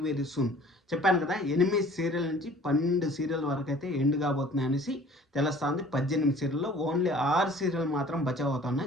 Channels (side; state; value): both; normal; correlation 0.50